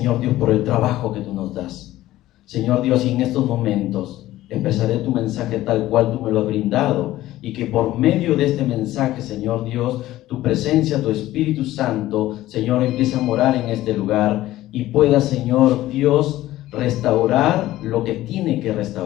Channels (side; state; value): right; quieter; 15.4 dB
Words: Dios, por el trabajo que tú nos das. Señor Dios, y en estos momentos expresaré tu mensaje tal cual tú me lo has brindado, y que por medio de este mensaje, Señor Dios, tu presencia, tu Espíritu Santo, Señor, empiece a morar en este lugar y pueda, Señor Dios, restaurar lo que tiene que